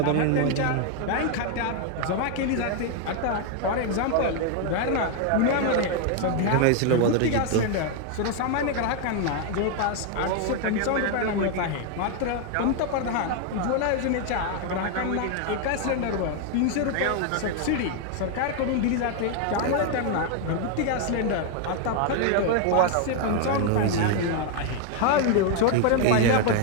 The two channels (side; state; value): both; different; correlation 0.00